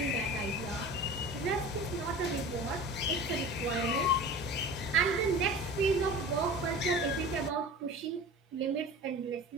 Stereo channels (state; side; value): normal; both; correlation 0.36